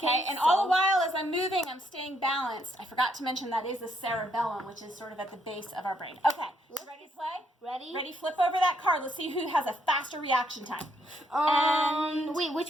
and all the while as I'm moving, I'm staying balanced. I forgot to mention that is the cerebellum, which is sort of at the base of our brain. Okay, you ready to play? Ready? Ready, flip over that card. Let's see who has a faster reaction time. Wait,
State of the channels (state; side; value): normal; both; correlation 0.73